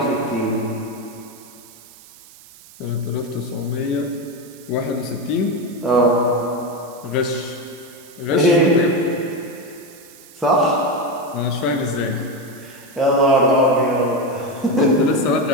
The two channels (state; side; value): noise; right; hiss, 22 dB below the sound